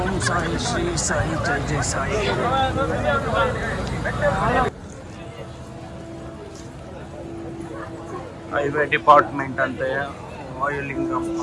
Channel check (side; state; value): both; identical; correlation 1.00